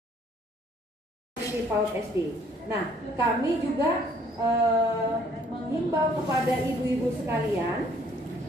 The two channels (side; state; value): both; normal; correlation 0.61